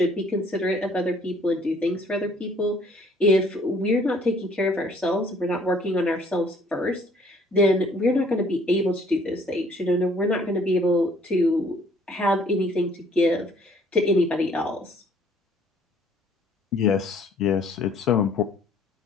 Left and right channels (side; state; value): both; normal; correlation 0.60